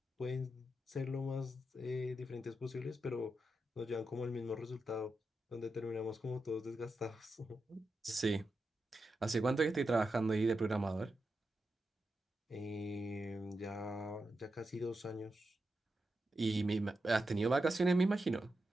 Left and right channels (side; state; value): both; normal; correlation 0.88